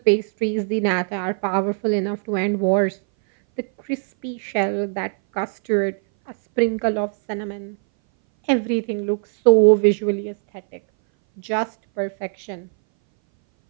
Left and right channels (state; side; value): silent; left; 60 dB below the other